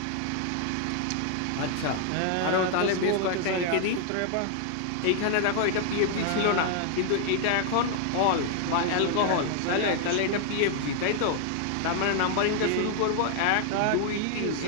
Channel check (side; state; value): both; different; correlation 0.00